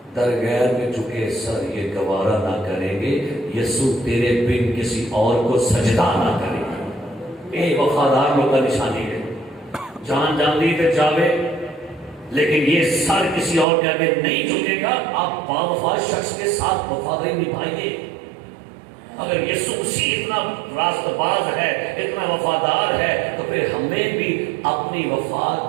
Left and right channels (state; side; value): drops out; left; at 13.7 s